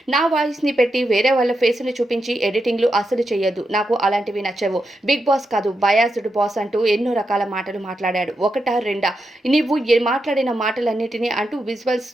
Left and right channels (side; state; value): both; normal; correlation 0.86